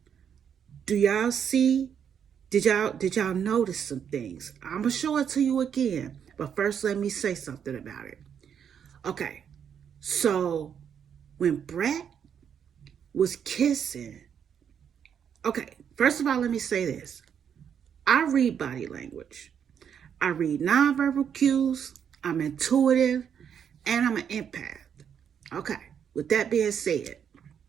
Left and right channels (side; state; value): left; quieter; 8.1 dB